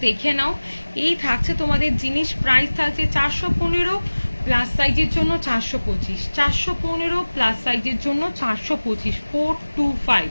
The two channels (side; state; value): both; inverted; correlation -1.00